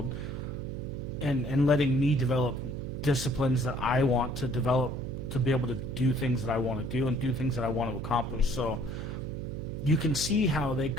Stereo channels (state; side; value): noise; right; hum, 6 dB below the sound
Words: and letting me develop disciplines that I want to develop to be able to do things that I want to do and do things that I want to accomplish. So you can see how they